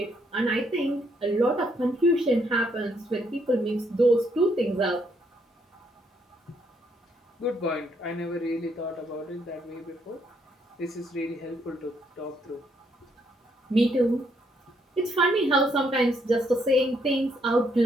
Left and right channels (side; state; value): both; normal; correlation 0.72